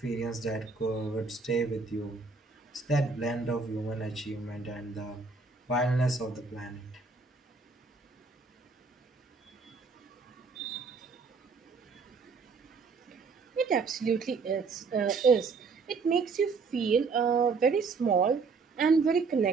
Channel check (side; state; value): left; quieter; 4.6 dB